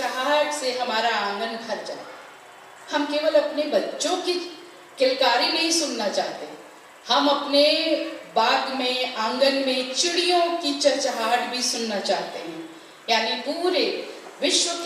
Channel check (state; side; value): identical; both; correlation 1.00